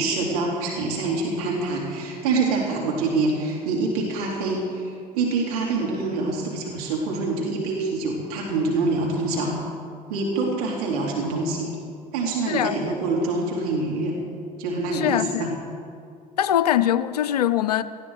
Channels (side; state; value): both; normal; correlation 0.20